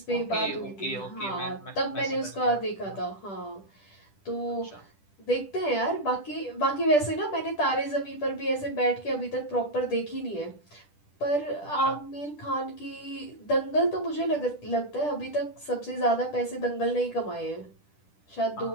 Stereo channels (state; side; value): late; right; 10 ms